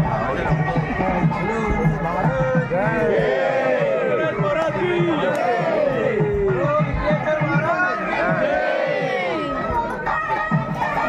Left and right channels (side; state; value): both; identical; correlation 1.00